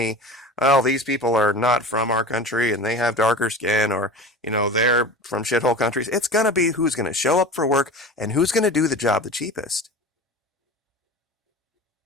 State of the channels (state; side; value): normal; both; correlation 0.34